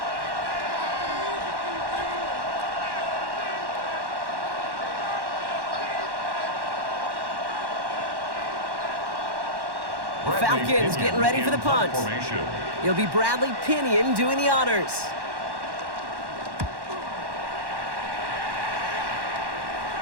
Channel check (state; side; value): late; left; 1.1 ms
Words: The Falcons getting ready for the punt. It'll be Bradley Pinion doing the honors.